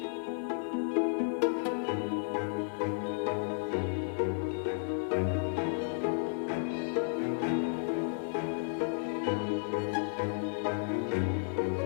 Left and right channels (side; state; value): right; silent; 56 dB below the other